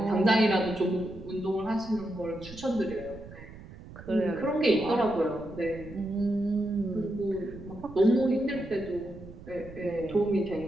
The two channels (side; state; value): right; noise; rumble, 16 dB below the sound